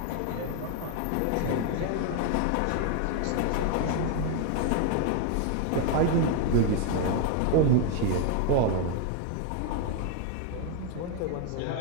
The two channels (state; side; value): different; both; correlation 0.01